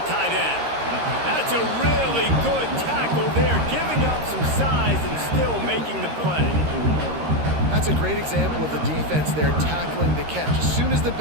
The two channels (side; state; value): left; late; 13 ms